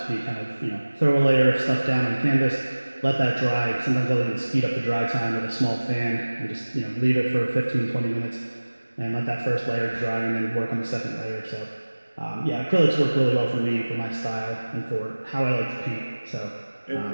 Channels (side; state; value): both; inverted; correlation -1.00